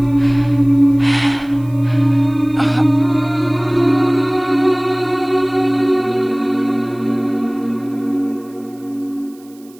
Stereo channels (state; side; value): noise; right; hiss, 28 dB below the sound